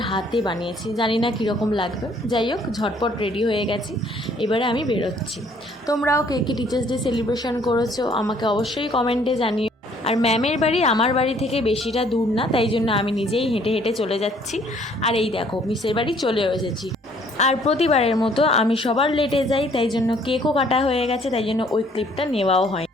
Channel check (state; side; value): normal; both; correlation 0.61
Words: হাতে বানিয়েছি, জানি না কীরকম লাগবে। যাই হোক, ঝটপট রেডি হয়ে গেছি, এবারে আমি বেরোচ্ছি। তোমরাও কে কে টিচার্স ডে সেলিব্রেশন করেছো আমাকে অবশ্যই কমেন্টে জানিও। আর ম্যামের বাড়ি আমার বাড়ি থেকে বেশিটা দূর না, তাই জন্য আমি নিজেই হেঁটে হেঁটে চলে যাচ্ছি। আর এই দেখো মিসের বাড়ি চলেও এসেছি। আর প্রতিবারের মতো আমি সবার লেটে যাই, তাই জন্য কেকও কাটা হয়ে গেছে, তাই জন্য ওই ক্লিপটা নেওয়াও হয়।